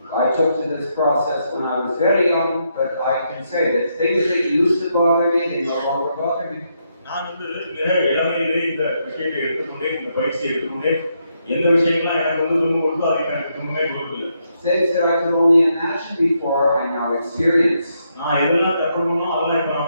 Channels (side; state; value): both; inverted; correlation -0.79